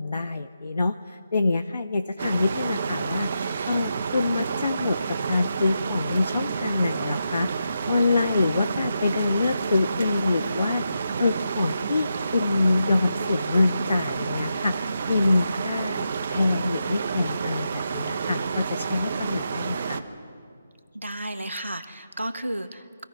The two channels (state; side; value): inverted; both; correlation -0.86